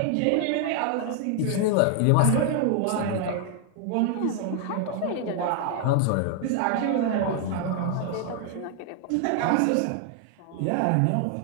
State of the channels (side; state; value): both; different; correlation 0.00